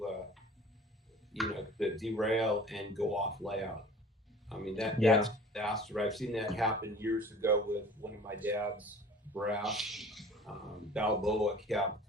you know, to derail and go off layout. I mean, that's a disaster. I've seen that happen years ago with one of my dad's brass Balboa cab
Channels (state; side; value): normal; both; correlation 0.45